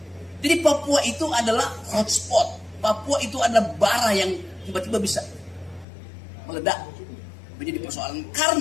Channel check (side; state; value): right; drops out; at 5.9 s